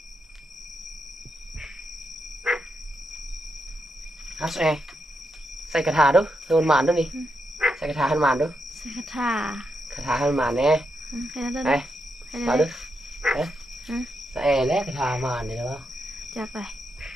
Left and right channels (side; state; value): both; normal; correlation 0.84